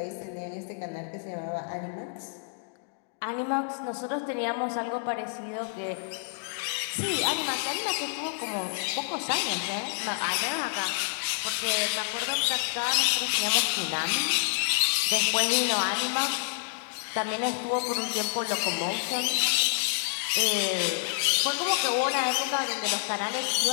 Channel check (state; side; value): silent; right; digital silence